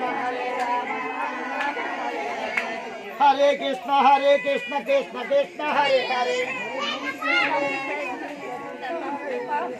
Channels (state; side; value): identical; both; correlation 1.00